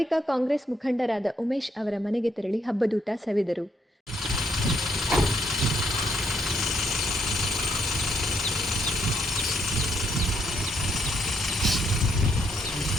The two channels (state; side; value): normal; both; correlation 0.74